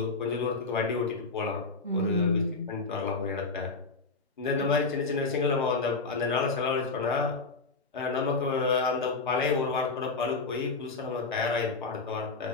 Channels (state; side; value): quieter; right; 4.0 dB